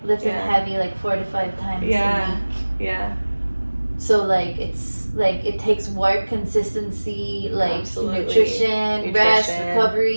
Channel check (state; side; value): inverted; both; correlation -1.00